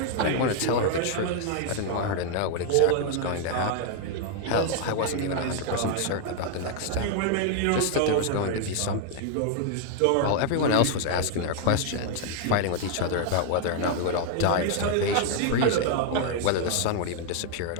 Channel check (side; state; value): both; different; correlation 0.00